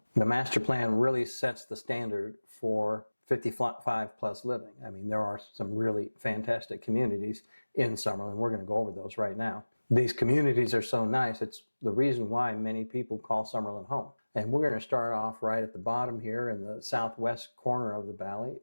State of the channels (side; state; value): both; inverted; correlation -1.00